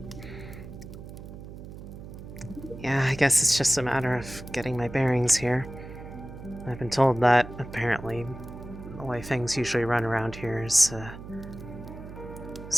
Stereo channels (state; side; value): noise; right; hum, 13 dB below the sound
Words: yeah, I guess it's just a matter of getting my bearings here. I've been told that, apparently, the way things usually run around here is